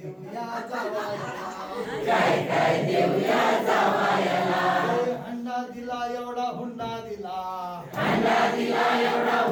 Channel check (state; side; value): identical; both; correlation 1.00